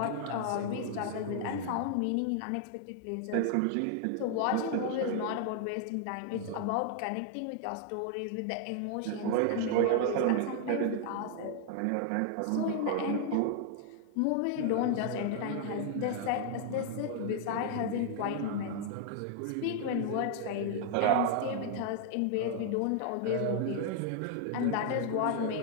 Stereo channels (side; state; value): both; different; correlation 0.00